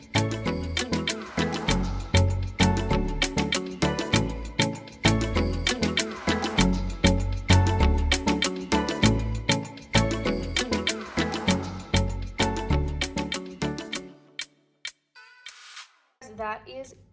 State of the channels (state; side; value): identical; both; correlation 1.00